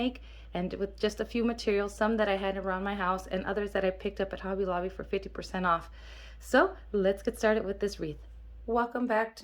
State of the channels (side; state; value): both; identical; correlation 1.00